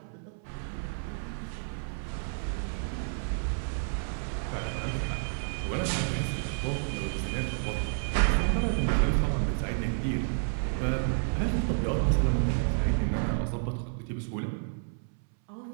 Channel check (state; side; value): silent; left; 58 dB below the other